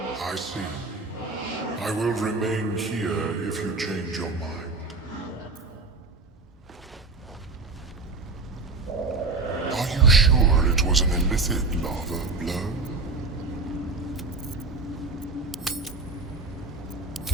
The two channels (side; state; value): left; quieter; 3.7 dB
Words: I see. I will remain here if you change your mind. Are you sure it was an illithid larva, Blur?